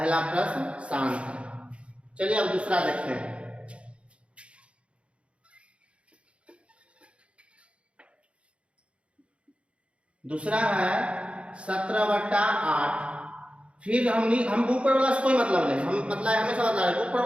प्रश्न शांत है। चलिए अब दूसरा देखते हैं। दूसरा है 17 बट्टा 8। फिर हम ऊपर वाला से कोई मतलब नहीं, हम मतलब हमेशा बतला रहे ऊपर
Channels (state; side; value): late; left; 0.060 ms